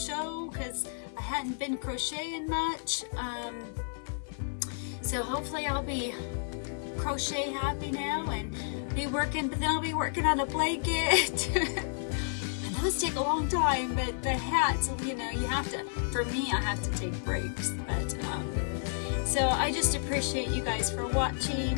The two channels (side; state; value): right; silent; digital silence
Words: because I hadn't been crocheting much. So hopefully I'll be crochet happy now and be working, but then I'll be working on a blanket. Those take a long time, but the hats, you have to, for me, I have to take breaks. But so I just appreciate you guys for